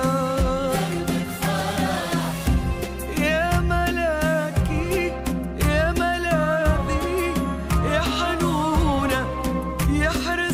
يا ملاكي يا ملاذي يا حنونة، يا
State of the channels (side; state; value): both; identical; correlation 1.00